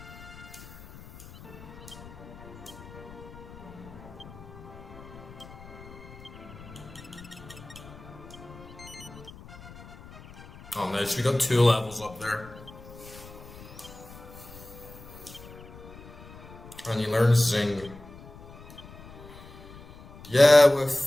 Oh nice, we got 2 levels up there. And you learn Zing. Yeah,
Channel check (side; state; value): left; noise; rumble, 17 dB below the sound